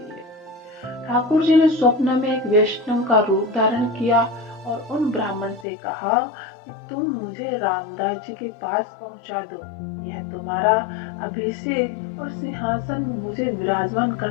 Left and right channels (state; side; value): drops out; right; at 5.7 s